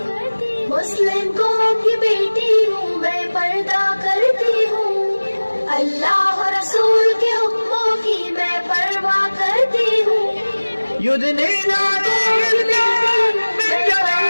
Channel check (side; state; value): both; inverted; correlation -1.00